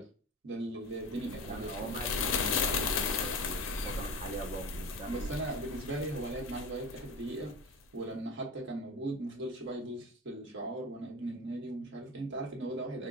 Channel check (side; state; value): both; normal; correlation 0.29